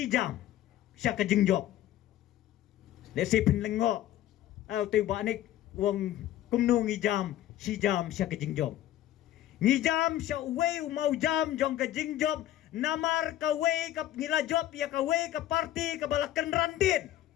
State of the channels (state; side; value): quieter; right; 13.1 dB